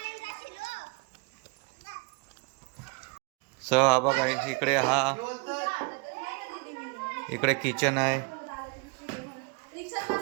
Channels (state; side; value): quieter; left; 32.3 dB